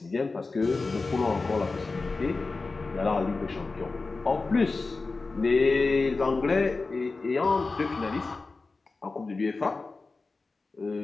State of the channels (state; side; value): quieter; right; 3.8 dB